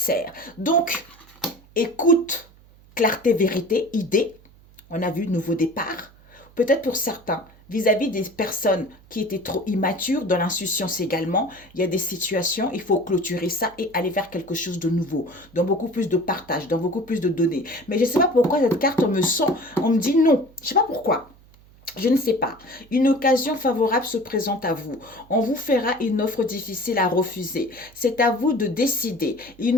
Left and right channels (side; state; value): right; noise; hum, 26 dB below the sound